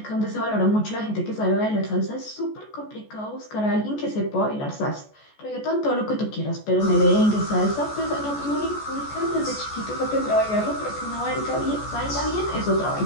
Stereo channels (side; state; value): right; late; 14 ms